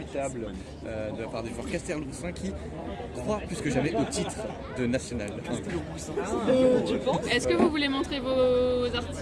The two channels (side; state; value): both; identical; correlation 1.00